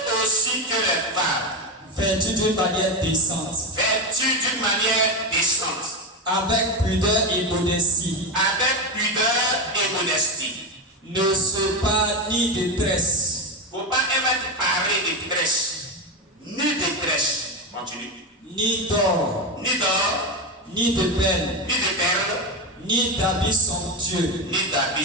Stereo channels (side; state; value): both; normal; correlation 0.14